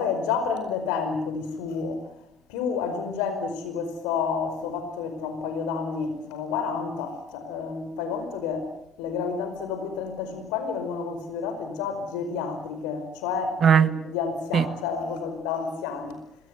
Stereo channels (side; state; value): both; normal; correlation 0.48